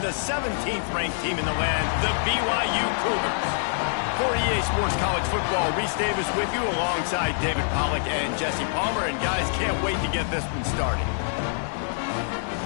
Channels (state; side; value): silent; right; digital silence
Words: 17th ranked team in the land, the BYU Cougars. For EA Sports College Football, Reese Davis with you alongside David Pollack and Jesse Palmer. And guys, can't wait to get this one started.